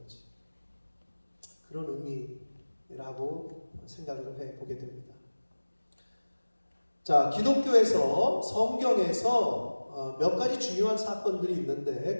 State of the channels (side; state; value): both; inverted; correlation -1.00